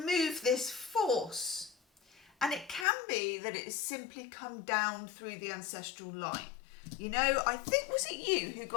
this force. And it can be that it has simply come down through the ancestral line. You know, I think, was it you who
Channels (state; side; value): drops out; right; at 2.9 s